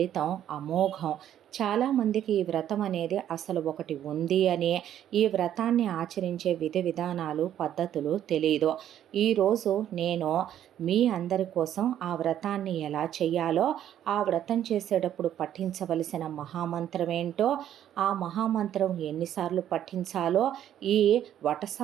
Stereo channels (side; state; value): left; quieter; 10.9 dB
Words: అమోఘం. చాలామందికి ఈ వ్రతం అనేది అసలు ఒకటి ఉంది అని, ఈ వ్రతాన్ని ఆచరించే విధి విధానాలు పద్ధతులు తెలియదు. ఈరోజు నేను మీ అందరి కోసం ఆ వ్రతాన్ని ఎలా చేయాలో, ఆ వ్రతం చేసేటప్పుడు పఠించవలసిన మహామంత్రం ఏంటో, ఆ మహామంత్రం ఎన్నిసార్లు పఠించాలో, ఈ